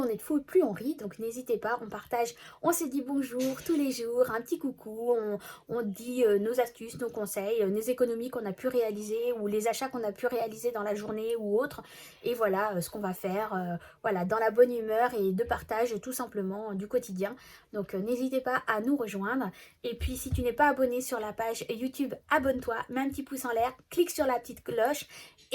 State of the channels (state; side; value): identical; both; correlation 1.00